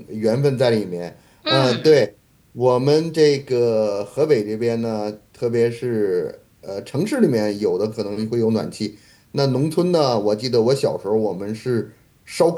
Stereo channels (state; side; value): identical; both; correlation 1.00